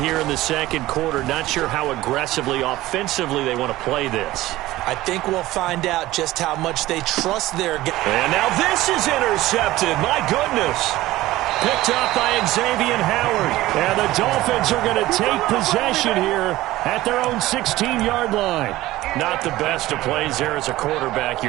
here in the second quarter, not sure how aggressively, offensively they want to play this. I think we'll find out just how much they trust their game. And now this is intercepted. My goodness. Picked up by Xavier Howard. And the Dolphins are going to take possession here at their own 16-yard line. Not the best of plays there as a quarterback.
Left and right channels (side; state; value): left; quieter; 16.8 dB